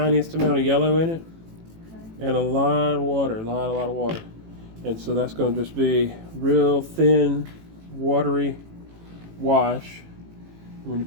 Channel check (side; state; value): left; late; 18 ms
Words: amount of yellow in it, and a lot of water, a lot of water. And so that's going to just be real thin, watery wash. When you